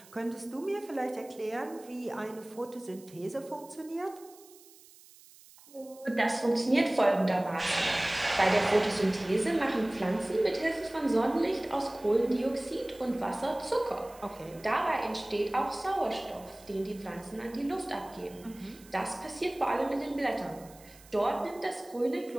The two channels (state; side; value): noise; right; hiss, 23 dB below the sound